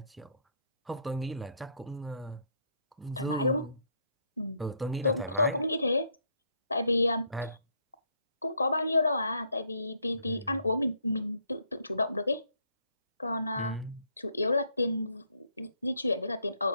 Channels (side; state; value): both; inverted; correlation -0.69